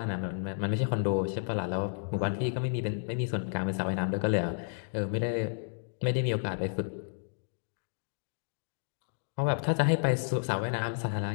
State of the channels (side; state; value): right; silent; digital silence